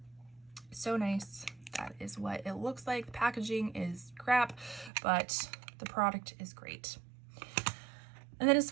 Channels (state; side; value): drops out; left; at 4.9 s